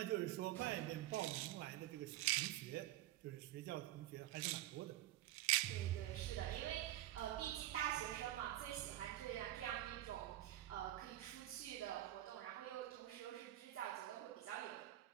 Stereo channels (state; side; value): quieter; left; 14.7 dB